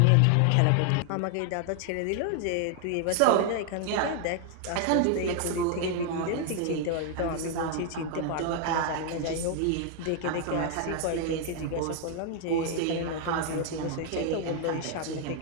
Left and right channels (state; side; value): different; both; correlation 0.00